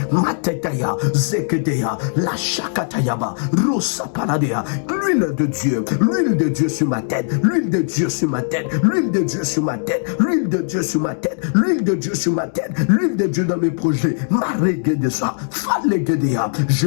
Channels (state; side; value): silent; right; 66 dB below the other